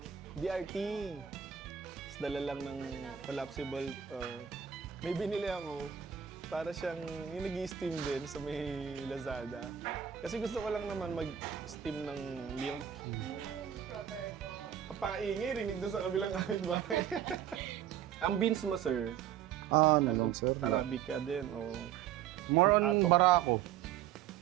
DRT. Tapos dala lang ng collapsible. May binili ako. Para siyang yung nag-steam din sa may Lazada. Kasi gusto ko lang naman mag-steam ng milk. Brother ko. Kapakaingay, rinig doon sa kabilang kapitbahay. Ang beans mo, sir, Ano, sir? Arabica din o More on Atok. Barako.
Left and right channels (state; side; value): quieter; left; 9.6 dB